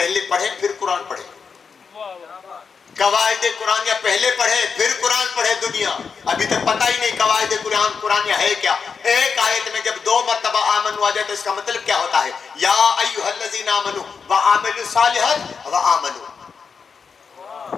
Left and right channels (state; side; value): quieter; right; 5.7 dB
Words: پڑھیں پھر قرآن پڑھیں. قواعد قرآنیہ پہلے پڑھیں پھر قرآن پڑھیں. دنیا ابھی تک پتہ ہی نہیں قواعد قرآنیہ ہے کیا. ایک آیت میں جب 2 مرتبہ آمنو آ جائے تو اس کا مطلب کیا ہوتا ہے؟ یا ایھا الذین آمنوا وعملوا الصالحات وآمنوا.